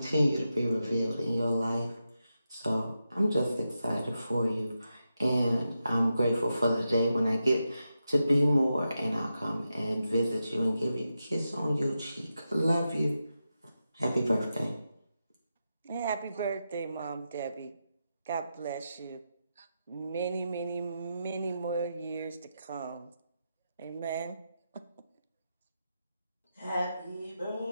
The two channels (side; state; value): both; inverted; correlation -0.88